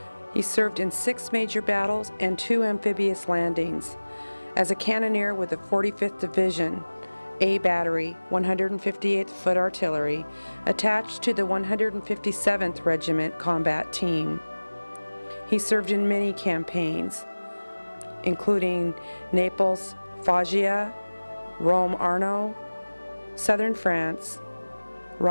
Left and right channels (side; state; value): both; inverted; correlation -1.00